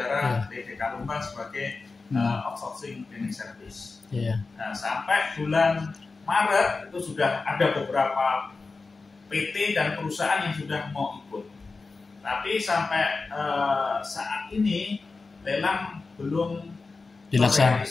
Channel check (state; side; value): quieter; right; 4.0 dB